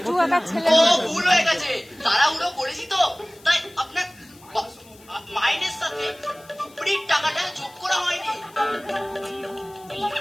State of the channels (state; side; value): noise; left; hiss, 25 dB below the sound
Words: একটা ছেলে। ও ভুল হয়ে গেছে, তাড়াহুড়ো করেছি তো, তাই আপনার মাইনের সাথে উপরির টাকাটা যোগ করা হয়নি।